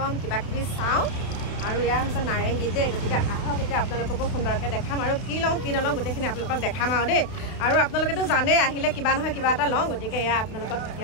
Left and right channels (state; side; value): late; right; 31 ms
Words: কিবা কিবি চাওঁ আৰু এয়া হৈছে নাৰেংগী দেই গতিকে আহক এতিয়া আপোনালোককো সুন্দৰকৈ দেখাম আৰু কি লওঁ কি নলওঁ গোটেইখিনি আপোনালোকক দেখাম আৰু দেই আৰু আপোনালোকেতো জানেই আহিলে কিবা নহয় কিবা এটা লওঁ গতিকে এয়া আপোনালোকক